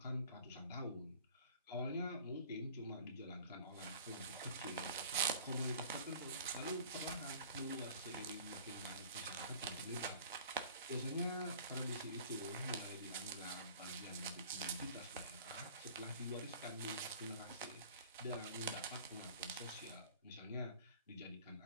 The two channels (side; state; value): both; inverted; correlation -0.47